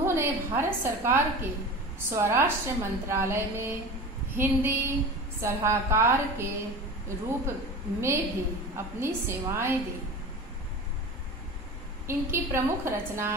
भारत सरकार के स्वराष्ट्र मंत्रालय में हिंदी सलाहकार के रूप में भी अपनी सेवाएं दी। इनकी प्रमुख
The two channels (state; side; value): normal; both; correlation 0.33